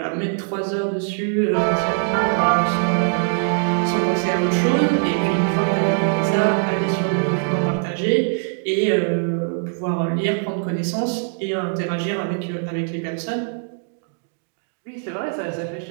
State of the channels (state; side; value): silent; left; digital silence